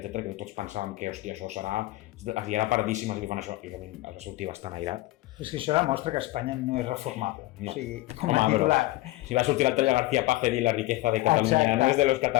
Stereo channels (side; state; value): right; quieter; 18.5 dB